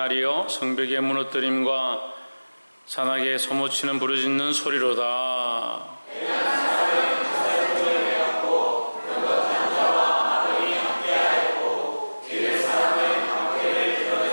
성벽의 무너뜨림과 산악의 소모치는 부르짖는 소리로다.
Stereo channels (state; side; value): inverted; both; correlation -1.00